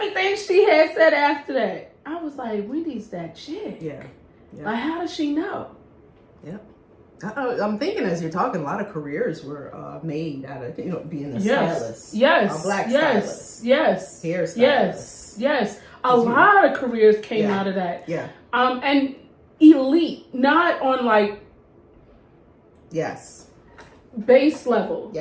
she had said after that, I was like, Wendy's that chick. Yeah. Like, how does she know? Yeah. I'm thinking as you're talking, a lot of careers were made out of, you know, being a stylist. Yes. A black stylist. Yes. Hairstylist. Yes. A lot of careers came out of that. Yeah. And elite, not on like base level.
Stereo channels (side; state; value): both; identical; correlation 1.00